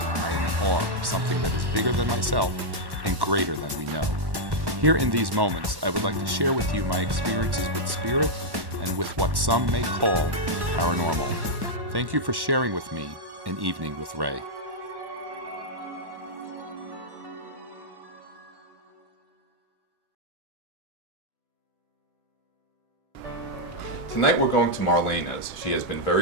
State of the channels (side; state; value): left; late; 1.1 ms